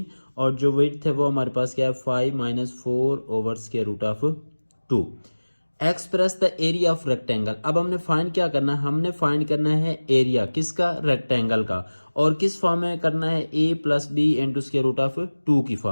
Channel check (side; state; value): both; inverted; correlation -1.00